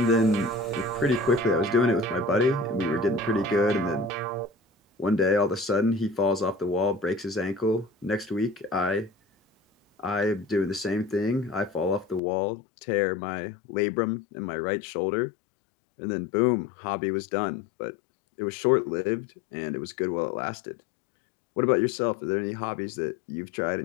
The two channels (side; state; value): right; drops out; at 12.2 s